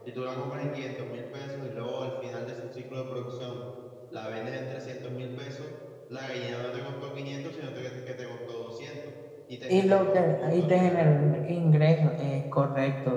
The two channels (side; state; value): both; identical; correlation 1.00